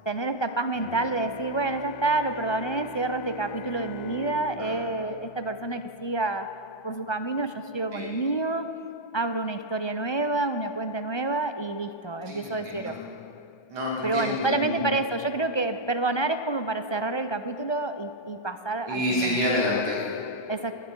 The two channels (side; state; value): right; late; 1.2 ms